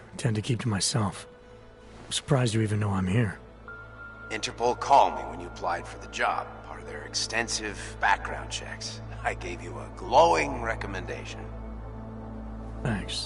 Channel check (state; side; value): identical; both; correlation 1.00